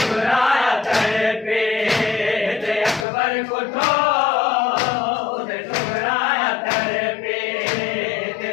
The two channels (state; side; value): drops out; right; at 3.1 s